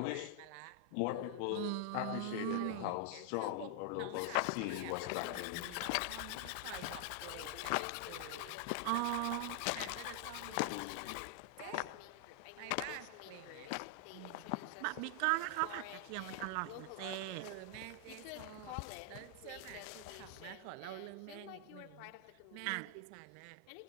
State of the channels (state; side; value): different; both; correlation 0.00